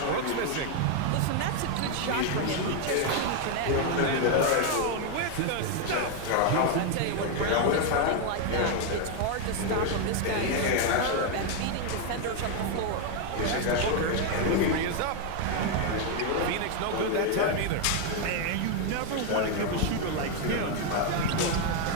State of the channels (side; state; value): both; different; correlation 0.01